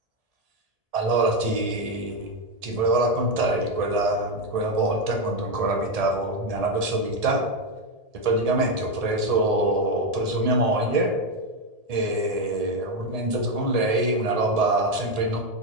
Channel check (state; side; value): late; left; 1.7 ms